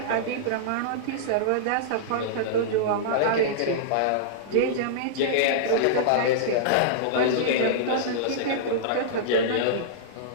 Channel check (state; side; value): different; both; correlation -0.03